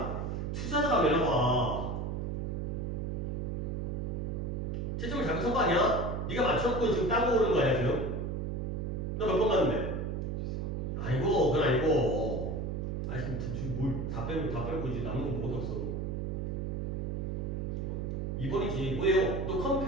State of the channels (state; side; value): noise; right; hum, 2 dB below the sound